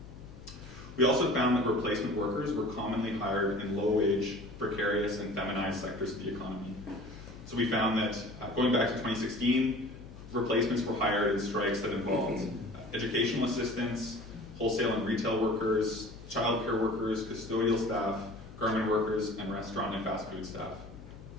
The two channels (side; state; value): left; noise; hum, 16 dB below the sound